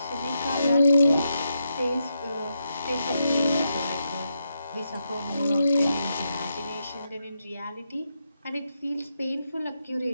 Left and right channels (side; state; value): both; inverted; correlation -0.84